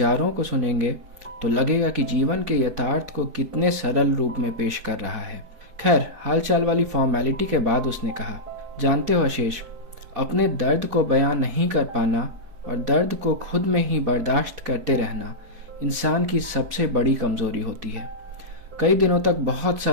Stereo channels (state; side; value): late; left; 4.6 ms